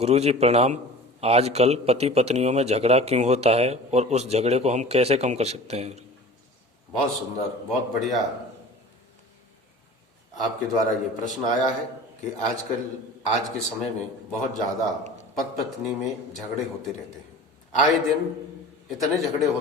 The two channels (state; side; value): normal; both; correlation 0.39